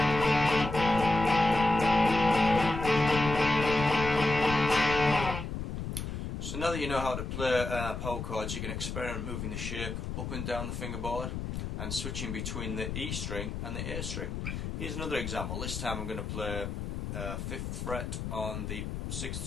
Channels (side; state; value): left; noise; rumble, 5 dB below the sound